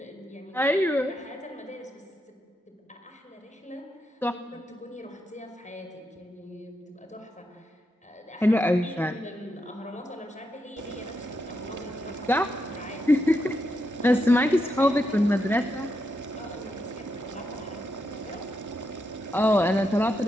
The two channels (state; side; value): normal; both; correlation 0.83